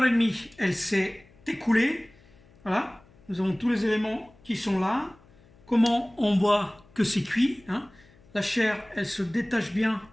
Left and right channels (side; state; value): left; noise; hum, 28 dB below the sound